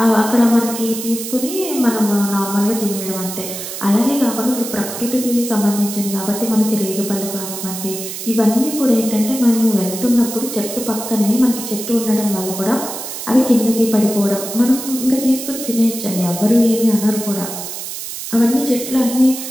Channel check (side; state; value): right; noise; hiss, 8 dB below the sound